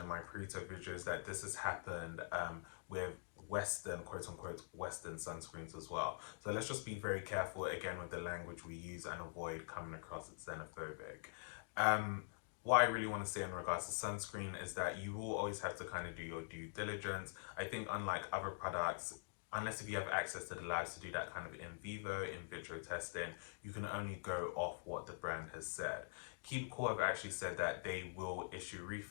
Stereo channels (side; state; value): right; silent; digital silence